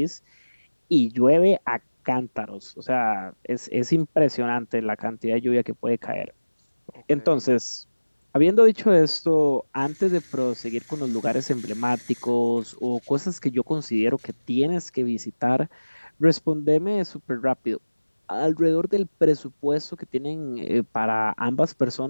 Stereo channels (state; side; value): inverted; both; correlation -1.00